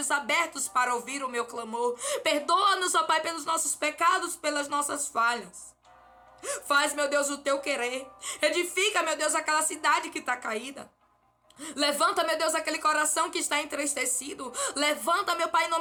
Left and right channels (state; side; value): identical; both; correlation 1.00